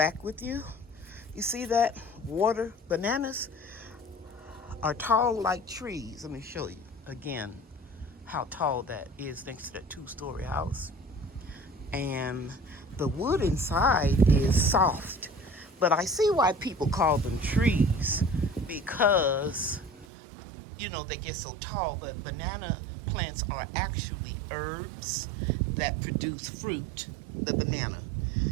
with you. You see that? Water bananas are tall like trees. Let me show you again how tall that is next to that 2-story house. And the wood inside is soft. But I see why people call them trees, because, you know, they get so tall. But banana plants are actually herbs that produce fruit, the banana.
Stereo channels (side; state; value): left; drops out; at 20.1 s